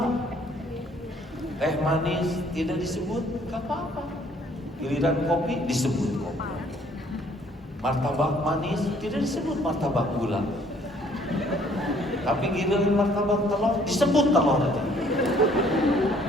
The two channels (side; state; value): both; normal; correlation 0.61